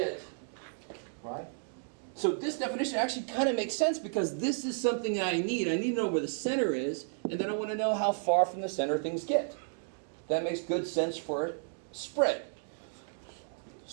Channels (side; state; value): left; silent; digital silence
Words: right? So this definition actually kind of makes sense because this is something that I need. I need to know where the center is, and then I want to know how far from the center things get. That makes good sense for spread.